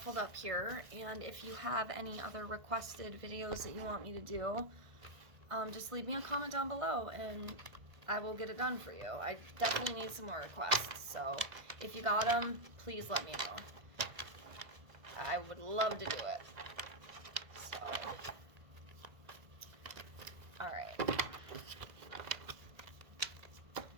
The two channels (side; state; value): left; late; 1.5 ms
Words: up here, and if you have any other requested videos that you want me to do, just leave me a comment down below and I will get it done for you. I definitely need some more requests, so if you got them, please let me know. I would love to do it. So, alright.